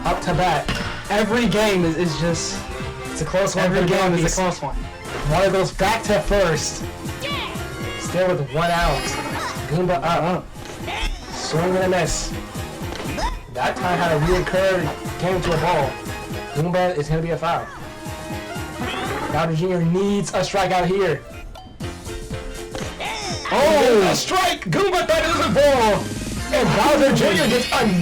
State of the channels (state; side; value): identical; both; correlation 1.00